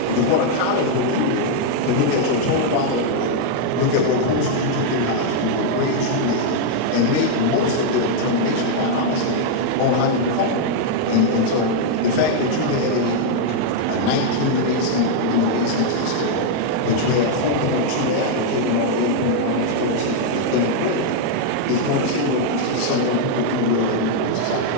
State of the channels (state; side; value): different; both; correlation 0.00